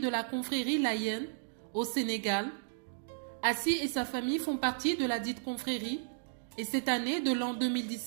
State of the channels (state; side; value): silent; left; digital silence